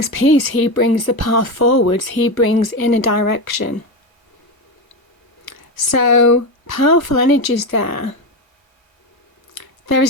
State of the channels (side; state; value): right; late; 1.2 ms